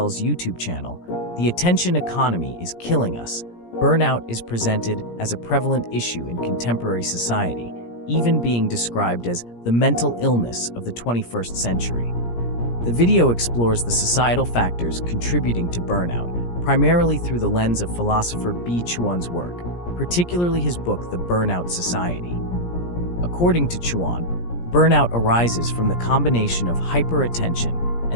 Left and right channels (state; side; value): late; right; 17 ms